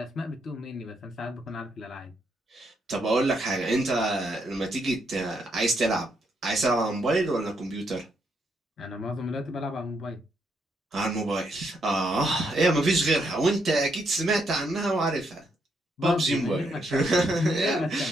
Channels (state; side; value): normal; both; correlation 0.77